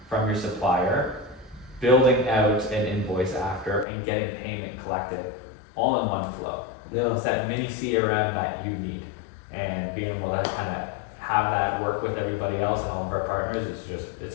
from your supplier, building out an invoice after, and getting payment collected all in one flow. Yeah. It's that mini CRM that you need, and being able to kind of have that work with everybody else and all of our partners,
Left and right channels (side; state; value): right; drops out; at 3.9 s